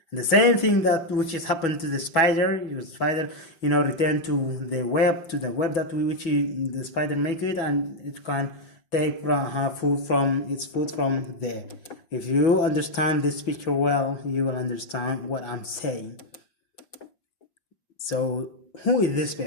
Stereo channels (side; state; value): right; late; 5.6 ms